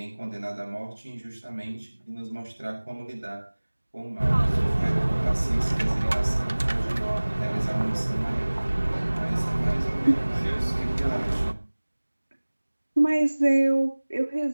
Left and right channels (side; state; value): both; inverted; correlation -1.00